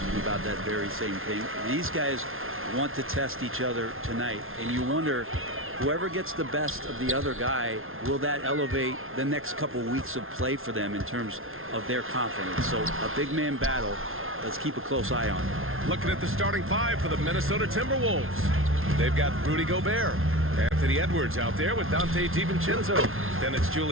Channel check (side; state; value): left; late; 0.61 ms